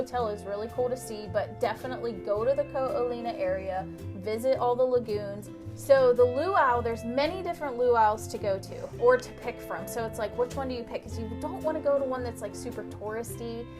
is really cool to see, but definitely go to the Ho'omalunia area, visit all the lagoons. So the luau, there's many different luau's to go to or to pick from. So it's like, which one do you pick? Because you don't want to go to one that's like super touristy.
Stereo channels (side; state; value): both; identical; correlation 1.00